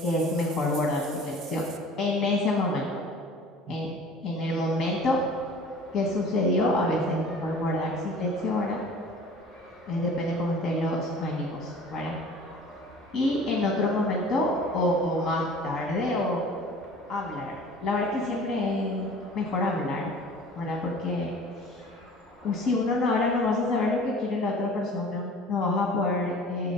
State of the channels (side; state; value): both; normal; correlation 0.45